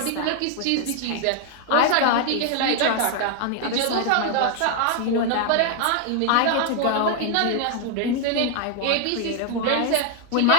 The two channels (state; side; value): different; both; correlation 0.00